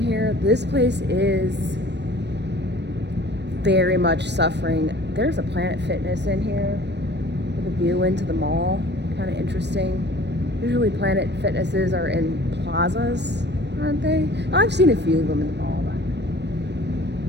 here, this place is very much suffering. There's a Planet Fitness in here with a view into the mall. Kind of interesting. Usually Planet Fitnesses are in plazas, aren't they? I've seen a few of them in the mall.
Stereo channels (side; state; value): left; late; 0.50 ms